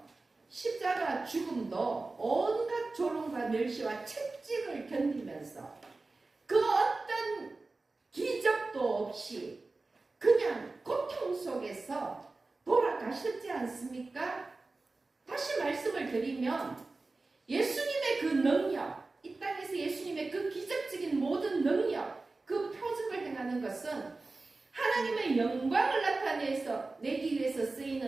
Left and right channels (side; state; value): left; quieter; 3.5 dB